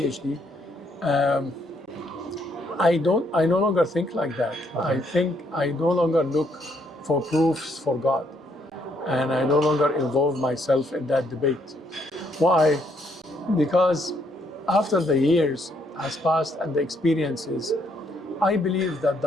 I no longer think like that. I think I no longer look for proofs for God. And I no longer involve myself in that debate. Why? Because after the years has passed and the experiences, I believe that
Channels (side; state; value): both; normal; correlation 0.71